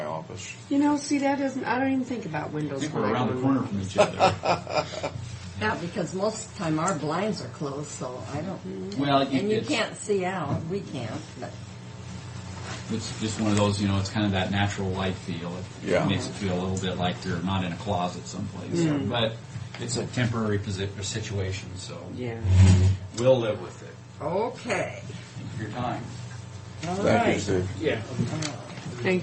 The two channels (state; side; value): identical; both; correlation 1.00